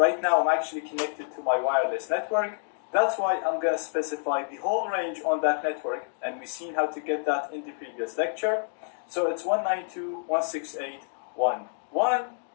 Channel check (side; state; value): right; silent; digital silence